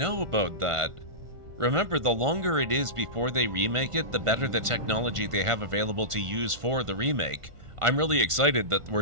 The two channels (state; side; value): late; left; 1.5 ms